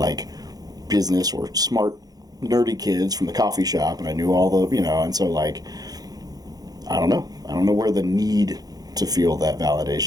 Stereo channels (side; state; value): left; late; 0.19 ms